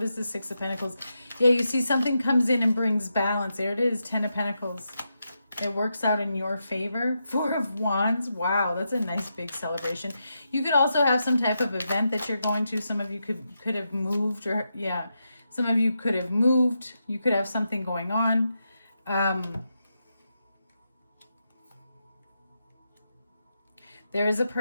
is the Six of Pentacles? Yeah, you see something comes in and brings balance. There it is, Ten of Pentacles. It works out in your favor. Four of Wands. Wow, that's a nice big celebration. You could also have some type of event that you're going to. Some of you could have moved, or yeah, some of you could have moved. You could have something going on. There is a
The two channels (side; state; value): both; inverted; correlation -0.86